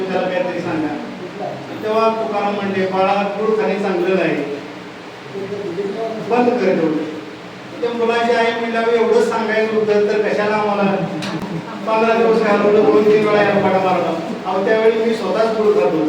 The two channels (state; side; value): identical; both; correlation 1.00